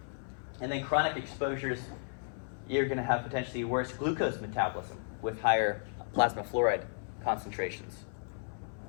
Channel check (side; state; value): right; silent; 55 dB below the other